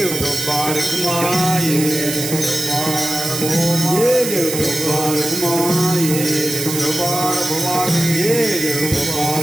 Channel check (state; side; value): noise; right; hiss, 4 dB below the sound